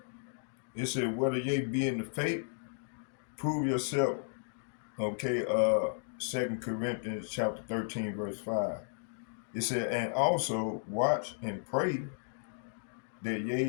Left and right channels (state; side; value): silent; right; digital silence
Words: It said whether ye be in the faith, prove yourself. Okay. 2 Corinthians chapter 13, verse 5. It said, and also watch and pray that